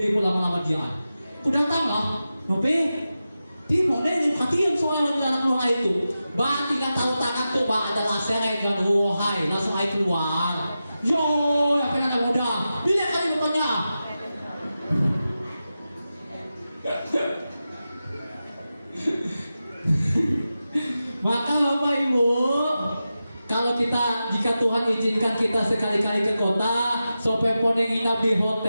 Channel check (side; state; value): both; inverted; correlation -0.92